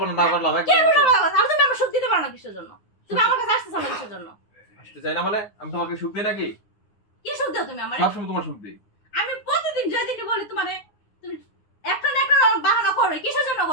না না করলাম কে একদম বলে বলা কথা? আর তুমি আমার সুখ দিতে পারো না কিসের জন্য তুমি আমার কাছে আসতেছো না কিসের জন্য আসতে চাই না মানে আমি তোমাকে সুখ দিই নাকি কি সুখ দাও তুমি আমারে সবসময় তোমার সুখ দিই আমি প্রতিদিন যেদিকে বলি তোমারে তুমি একটা না একটা বাহানা করো কিসের জন্য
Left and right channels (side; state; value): right; late; 9.7 ms